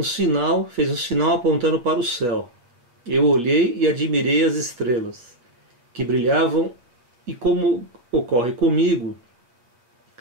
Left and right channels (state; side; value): late; left; 8.3 ms